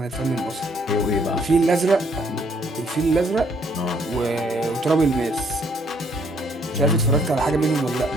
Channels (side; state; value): both; normal; correlation 0.67